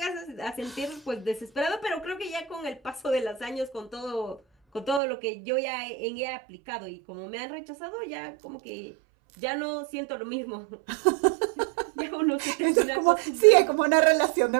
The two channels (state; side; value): drops out; left; at 5.0 s